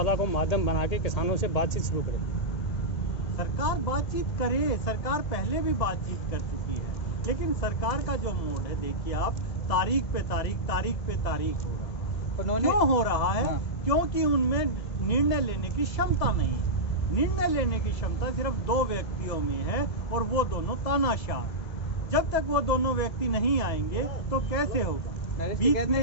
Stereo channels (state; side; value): late; right; 1.7 ms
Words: को माध्यम बना के किसानों से बातचीत शुरू करे। सरकार बातचीत करे, सरकार पहले भी बातचीत कर चुकी है, लेकिन सरकार का जो मोड है देखिए आप, तारीख पे तारीख हो रहा है। क्यों हो रहा है? क्योंकि उनमें निर्णय लेने की क्षमता नहीं है। निर्णय लेने की क्षमता सिर्फ 2 व्यक्तियों में है और वो दोनों तानाशाह। जब तक वो दोनों व्यक्ति नहीं आएंगे तो कैसे होगा? नरेश ने